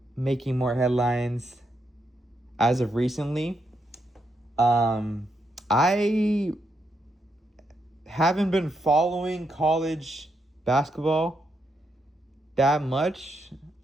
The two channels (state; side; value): normal; both; correlation 0.80